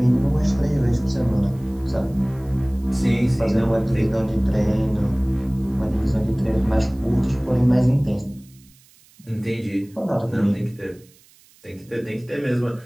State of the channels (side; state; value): right; noise; hiss, 29 dB below the sound